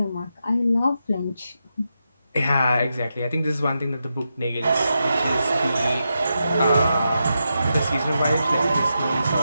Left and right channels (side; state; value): both; inverted; correlation -0.86